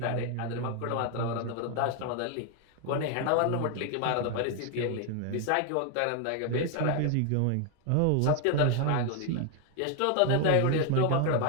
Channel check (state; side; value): different; both; correlation 0.00